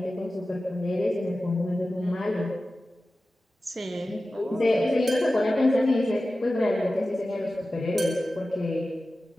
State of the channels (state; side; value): normal; both; correlation 0.95